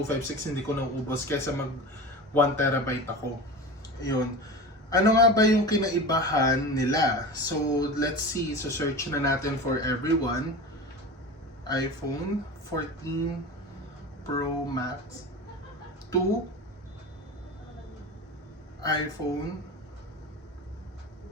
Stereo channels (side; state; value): both; normal; correlation 0.30